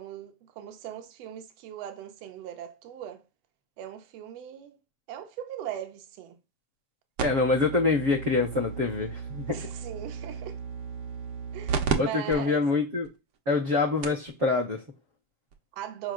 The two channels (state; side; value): late; left; 7.8 ms